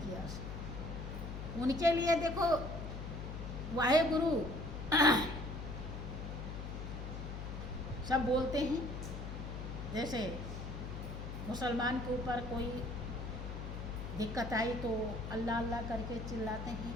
स्नान। उनके लिए देखो वाहे गुरु सब बोलते हैं। जैसे मुसलमान के ऊपर कोई दिक्कत आई तो अल्लाह अल्लाह करके चिल्लाते हैं,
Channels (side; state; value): left; noise; hum, 6 dB below the sound